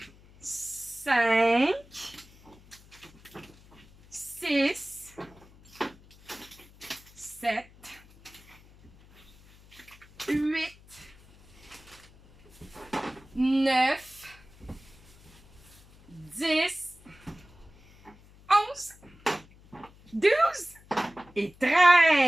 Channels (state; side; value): noise; left; hum, 25 dB below the sound